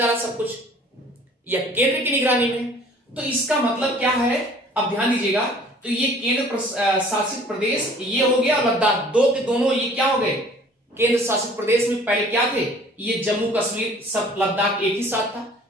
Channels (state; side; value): normal; both; correlation 0.52